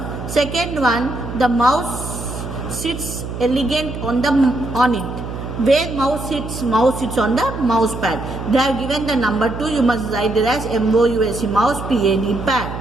Second one, the mouse sits elegant on it. Where mouse sits on the mouse pad. They have given the number 2, you must write it as MOUSE, mouse PAD pad.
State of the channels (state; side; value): noise; right; hum, 8 dB below the sound